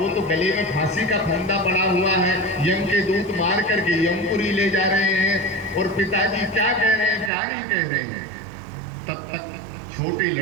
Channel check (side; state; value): left; drops out; at 7.3 s